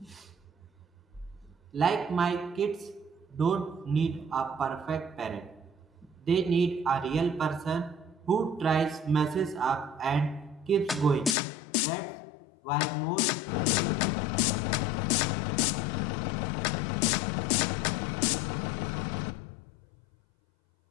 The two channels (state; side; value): drops out; right; at 11.4 s